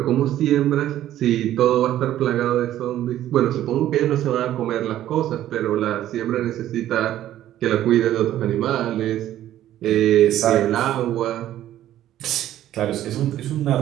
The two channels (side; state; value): left; quieter; 12.7 dB